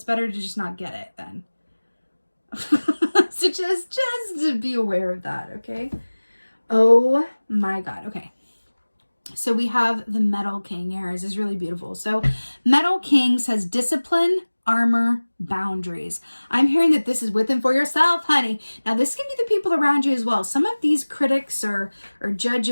better to just not get it then. So just to be aware of that, okay? Oh my God. Okay. So we have the Metal King here. This is really beautiful. So Metal King says discipline, armor, boundaries. I'm hearing that this is with and for yourself, honey. Now this can be the people around you as well. Some of these critics or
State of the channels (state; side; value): inverted; both; correlation -1.00